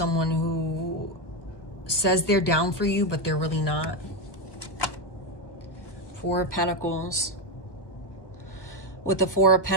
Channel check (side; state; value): right; late; 1.2 ms